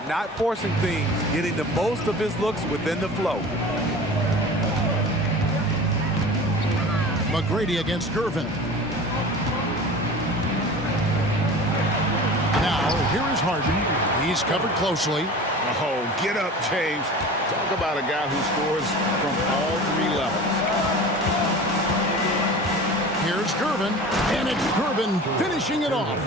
not forcing things, getting the most of his looks within the flow. McGrady against Gervin. Now, here is Harden. He's covered closely. Oh, get up, James. Talk about a guy who scores from all three levels. Here's Gervin, and it's Gervin finishing it off.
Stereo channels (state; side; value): normal; both; correlation 0.37